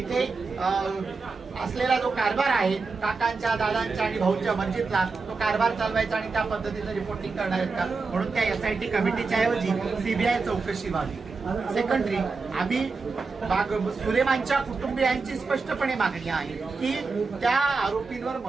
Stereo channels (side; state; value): left; quieter; 4.4 dB